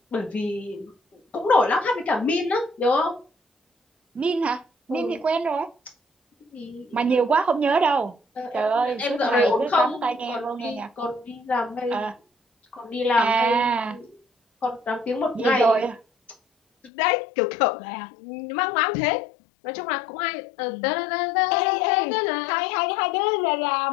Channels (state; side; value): drops out; right; at 16.9 s